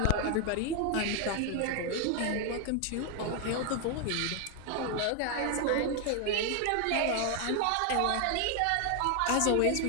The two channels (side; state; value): both; different; correlation 0.01